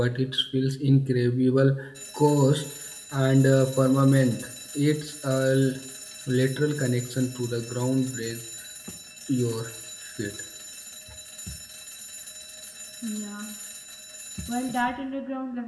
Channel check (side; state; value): both; identical; correlation 1.00